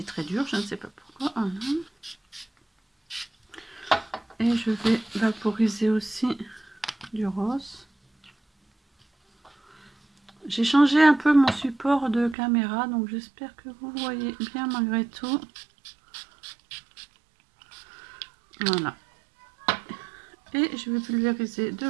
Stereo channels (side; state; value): left; drops out; at 12.4 s